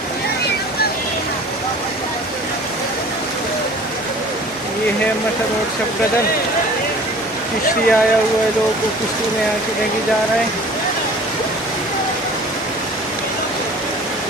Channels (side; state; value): both; normal; correlation 0.45